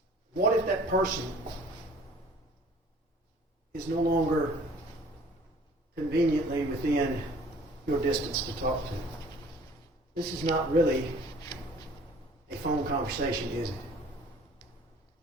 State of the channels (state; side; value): normal; both; correlation 0.52